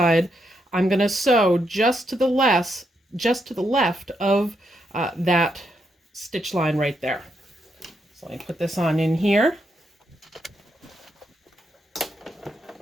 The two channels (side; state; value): both; normal; correlation 0.80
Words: I'm going to sew just to the left of that stitch line right there. So let me put this on in here.